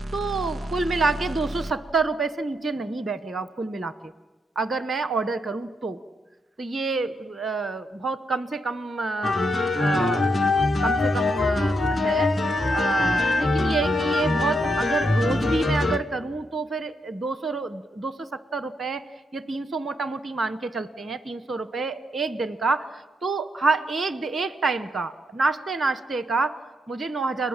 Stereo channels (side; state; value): both; normal; correlation 0.80